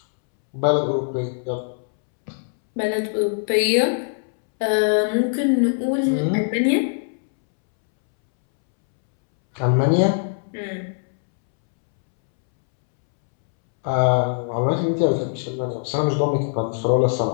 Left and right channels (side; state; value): right; silent; 65 dB below the other